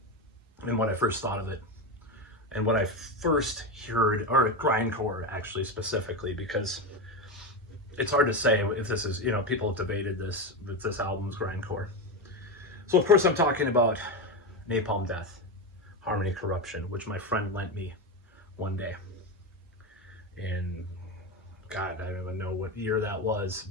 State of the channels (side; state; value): both; normal; correlation 0.15